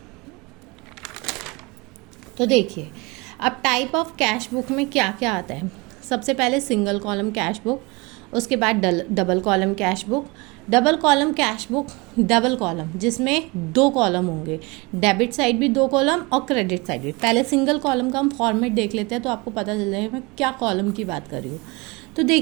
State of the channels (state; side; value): quieter; left; 26.1 dB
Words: तो देखिए अब टाइप ऑफ कैश बुक में क्या क्या आता है। सबसे पहले सिंगल कॉलम कैश बुक, उसके बाद double column cash book. Double column cash book double column जिसमें 2 कॉलम होंगे, डेबिट साइड भी 2 कॉलम और क्रेडिट साइड भी। पहले सिंगल कॉलम का हम फॉर्मेट देख लेते हैं तो आपको पता चल जाएगा मैं क्या कॉलम की बात कर रही हूँ। तो